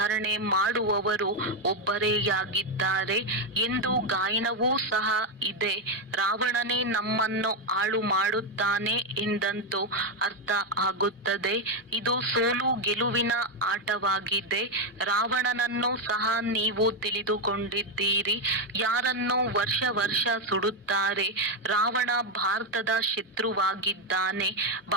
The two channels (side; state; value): both; normal; correlation 0.05